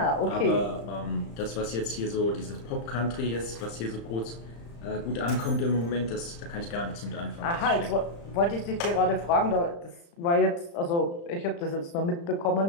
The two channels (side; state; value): right; late; 35 ms